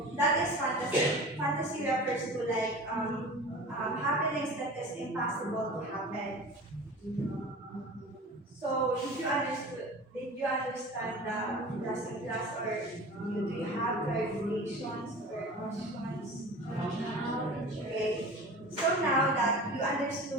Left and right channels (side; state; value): both; normal; correlation 0.37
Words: that is fantasy. Fantasy refers to like happenings that is impossible to happen. So did you understand the lesson class, or do you have clarifications or questions? Okay. So now that you